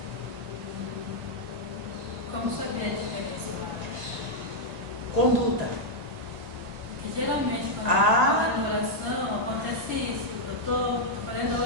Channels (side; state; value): left; late; 1.9 ms